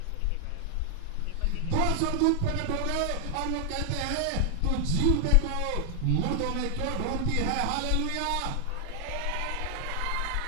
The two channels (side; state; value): both; different; correlation 0.00